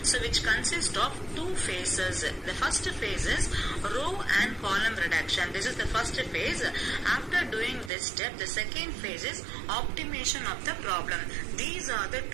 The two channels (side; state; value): left; drops out; at 7.9 s